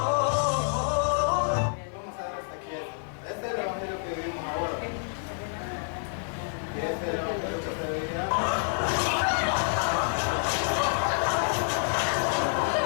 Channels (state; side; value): silent; right; 59 dB below the other